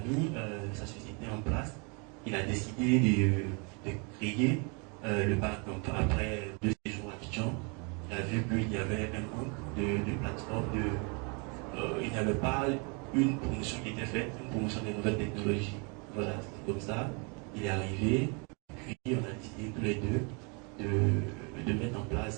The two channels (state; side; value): quieter; left; 33.4 dB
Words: sa société en place, il a décidé de créer le Barcamp. Après 2 séjours à Abidjan, il a vu qu'il y avait un manque de plateforme, il n'y avait pas une promotion qui était faite, une promotion des nouvelles technologies. Voilà, c'est comme ça, il est arrivé, puis on a décidé tous les deux de mettre en